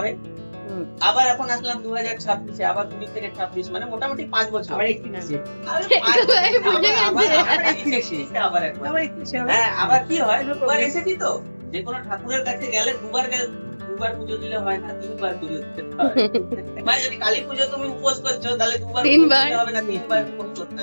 আবার এখন আসলাম 2026-এ, আবার 20 থেকে 26, মানে মোটামুটি 5 বছর। আবার একটু নিচে, আবার কি হয়, দুবার এসেছি তো, যে কোনো ঠাকুরের কাছে গেলে দুবার পুজো দিলে হয় না, 3বার পুজো দিতে হয়। মানে যদি কালী পুজো তুমি উপোস করছো, তাহলে 2বার হবে না, 3বার উপোস করতে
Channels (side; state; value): both; inverted; correlation -1.00